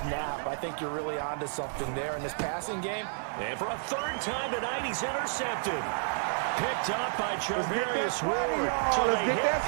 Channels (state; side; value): silent; left; digital silence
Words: I think you're really onto something there in this passing game. And for a 3rd time tonight, he's intercepted. Picked up by Charvarius Ward. So they hit